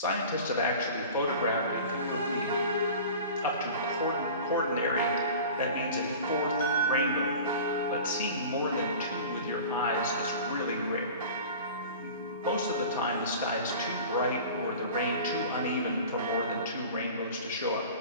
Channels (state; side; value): inverted; both; correlation -0.39